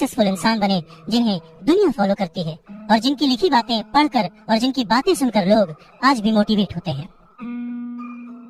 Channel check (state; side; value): identical; both; correlation 1.00